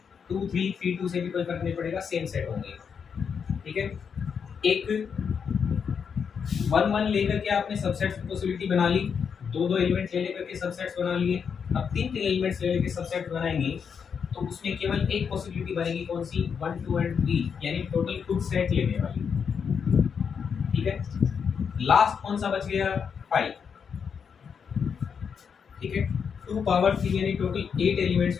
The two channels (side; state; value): right; quieter; 6.7 dB